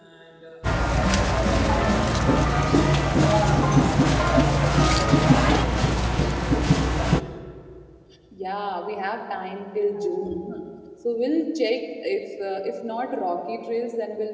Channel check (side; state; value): both; identical; correlation 1.00